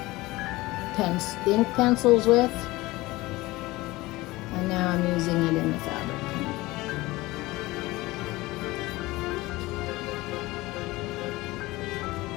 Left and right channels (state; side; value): quieter; right; 20.0 dB